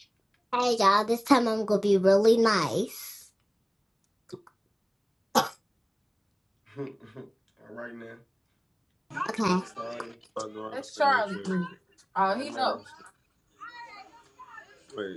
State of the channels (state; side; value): identical; both; correlation 1.00